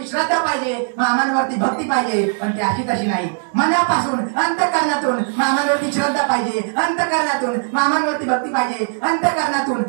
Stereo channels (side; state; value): left; silent; 60 dB below the other